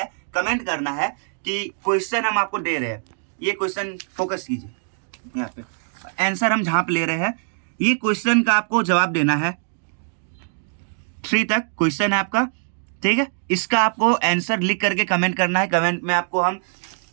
कमेंट करना है कि क्वेश्चन हम आपको दे रहे हैं, ये क्वेश्चन फोकस कीजिए यहाँ पे, आंसर हम जहाँ पे ले रहे हैं, ये क्वेश्चन का आपको जवाब देना है। 3 तक क्वेश्चन है आपका, ठीक है। इसका आपको आंसर लिख करके कमेंट करना है, कमेंट में आपको हम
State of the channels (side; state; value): left; silent; digital silence